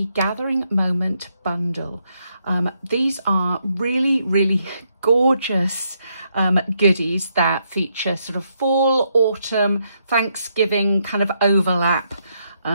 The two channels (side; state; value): both; inverted; correlation -0.77